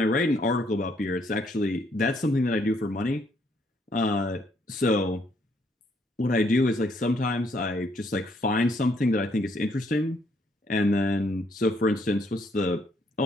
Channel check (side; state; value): both; normal; correlation 0.70